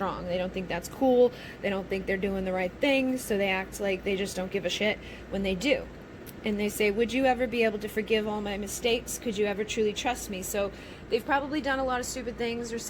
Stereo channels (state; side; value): identical; both; correlation 1.00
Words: They don't think that's cool. They don't think they're doing the right thing, so they act like they just don't give a shit when they do. And they say, would you ever be able to forgive all my mistakes? Could you ever truly trust me? So they've probably done a lot of stupid things or